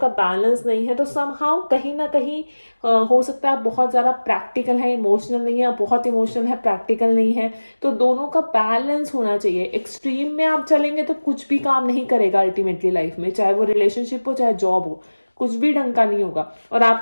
का बैलेंस नहीं है। तो समहाउ कहीं ना कहीं हो सकता है आप बहुत ज़्यादा प्रैक्टिकल है, इमोशनल नहीं है, बहुत इमोशनल है, प्रैक्टिकल नहीं है। तो दोनों का बैलेंस होना चाहिए। एक्सट्रीम में आप चलेंगे तो कुछ भी काम नहीं करेगा अल्टीमेटली लाइफ में, चाहे वो रिलेशनशिप हो चाहे जॉब हो, कुछ भी ढंग का नहीं होगा। और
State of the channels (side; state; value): both; inverted; correlation -1.00